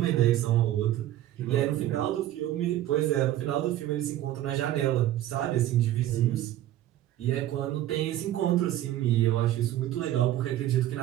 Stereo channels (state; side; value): quieter; left; 13.3 dB